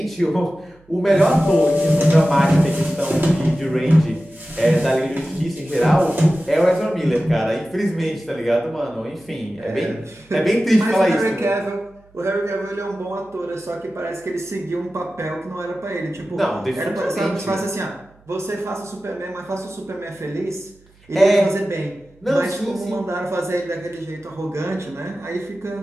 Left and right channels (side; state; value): right; noise; hum, 30 dB below the sound